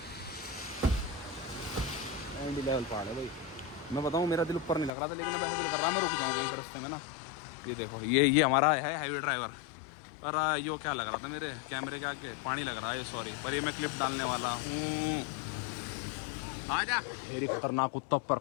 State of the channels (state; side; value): drops out; right; at 4.9 s